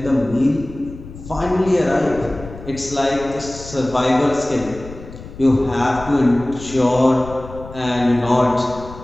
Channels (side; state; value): left; noise; rumble, 15 dB below the sound